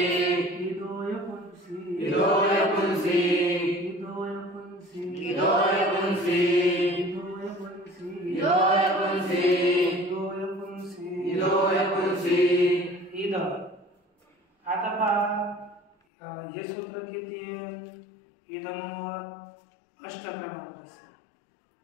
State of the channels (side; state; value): right; drops out; at 16.0 s